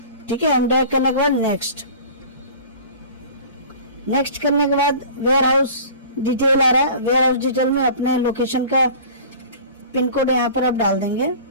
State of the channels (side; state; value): both; inverted; correlation -0.42